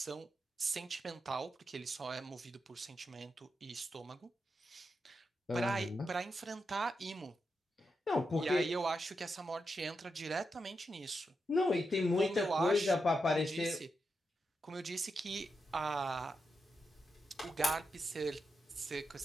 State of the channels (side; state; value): both; normal; correlation 0.86